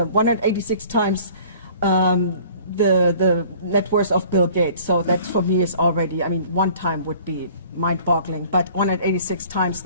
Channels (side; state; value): both; inverted; correlation -0.50